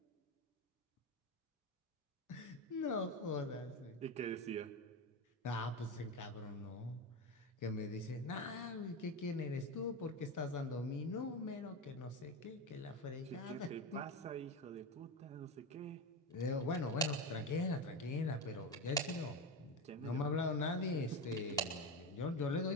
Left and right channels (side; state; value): both; normal; correlation 0.18